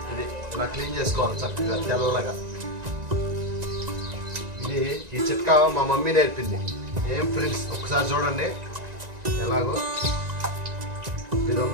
ఇది ఇలా క్లీన్ చేసుకోవాలి చక్కగా తెల్లగా. ఇది ఈ చిట్కా మా మమ్మీ నేర్పింది. ఏం ఫ్రెండ్స్, ఒకసారి చూడండి ఎలాగో. ఇది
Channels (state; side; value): late; left; 1.9 ms